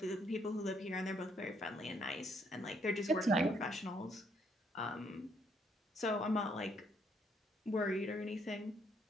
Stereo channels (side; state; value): both; normal; correlation 0.70